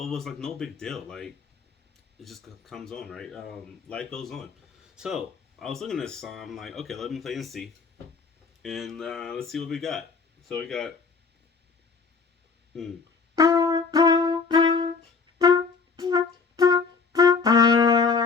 it was like no big deal. Like it just comes on, right? Life goes on. So I was looking at this song. I'm like, okay, let me play and see, and let's see what we got. So we got. Hmm.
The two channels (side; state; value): right; quieter; 5.0 dB